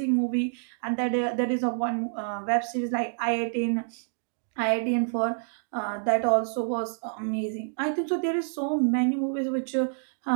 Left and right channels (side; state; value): left; silent; digital silence